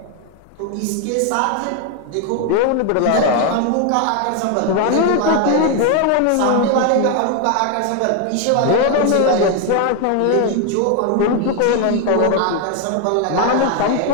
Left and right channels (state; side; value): different; both; correlation 0.01